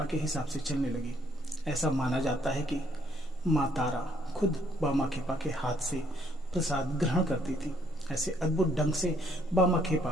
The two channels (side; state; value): both; normal; correlation 0.67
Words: के हिसाब से चलने लगी। ऐसा माना जाता है कि माँ तारा खुद बामाखेपा के हाथ से प्रसाद ग्रहण करती थी। ऐसे अद्भुत ढंग से